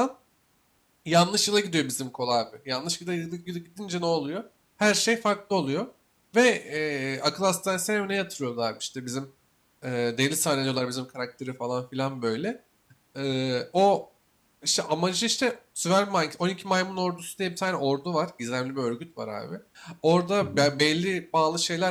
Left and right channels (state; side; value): identical; both; correlation 1.00